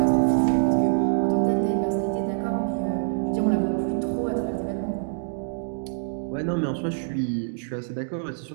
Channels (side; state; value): left; silent; digital silence